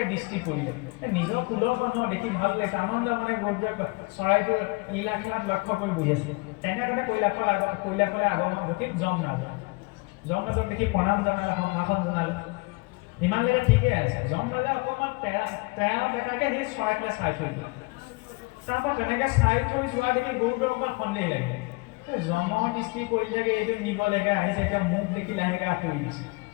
দৃষ্টি পৰিলে নিজৰ কুলৰ মানুহৰ দেখি ভাল লাগিছে আনন্দ মানে গুৰুত্ব চৰাইটোৰ লীলা খেলাত লক্ষ্য কৰি বহি আছে তেনেদৰে কৈলাশলৈ আগমন ঘটি যমৰাজক দেখি প্ৰণাম জনালে সম্ভাষণ জনালে ইমানলৈকে ঠিকেই আছে যমৰাজে অকণমান তেৰা দেখাকৈ সেই চৰাইটোলৈ চাই থৈ দিলে তাৰপৰা তেনেকৈ চাই থৈ যোৱা দেখি গৰুটোৰ অকণমান সন্দেহ লাগে যমৰ দৃষ্টি পৰি থাকে এইটো নিব লাগে আহিছে এতিয়া মোক দেখি লাহেকৈ আঁতৰি দিছে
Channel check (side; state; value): right; quieter; 26.7 dB